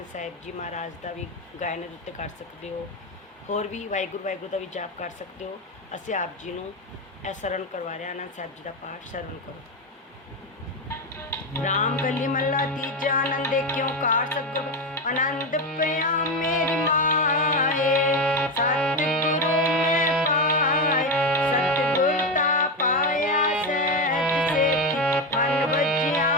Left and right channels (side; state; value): both; normal; correlation 0.13